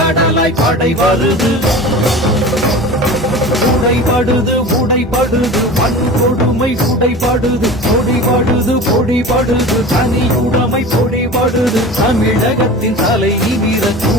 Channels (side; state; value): both; normal; correlation 0.35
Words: படை வருது. உடைபடுது உடைபடுது வன்கொடுமை உடைபடுது பொடிபடுது பொடிபடுது தனியுடைமை பொடிபடுது. தமிழகத்தின் தலை நிமிர